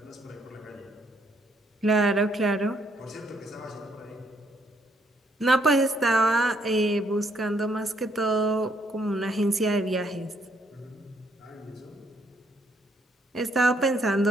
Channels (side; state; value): both; normal; correlation 0.71